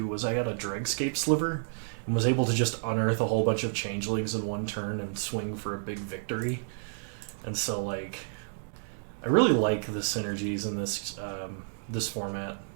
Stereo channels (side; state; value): left; silent; digital silence